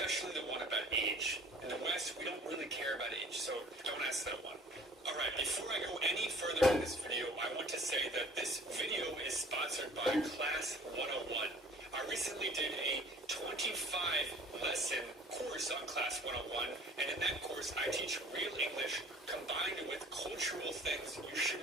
the one about age. In the West, we don't really care about age, so don't ask that one. Alright, before I go any further in this video, I want to say that this video is sponsored by Class 101. I recently did a 25-lesson course on Class 101, and in that course I teach real English combined with cultural things you should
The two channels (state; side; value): normal; both; correlation 0.50